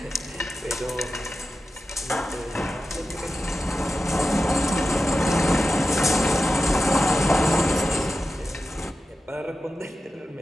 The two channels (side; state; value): both; normal; correlation 0.92